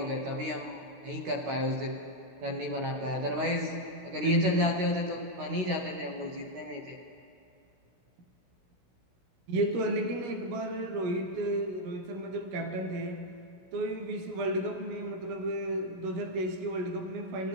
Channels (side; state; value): left; late; 16 ms